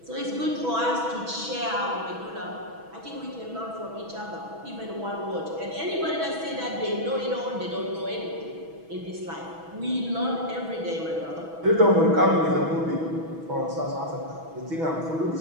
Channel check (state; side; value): late; left; 6.2 ms